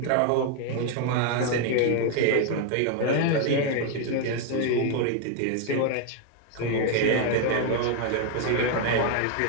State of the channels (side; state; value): both; different; correlation 0.01